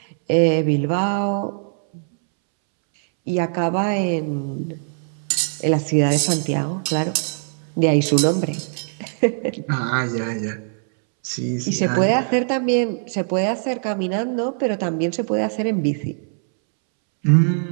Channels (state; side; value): silent; left; 65 dB below the other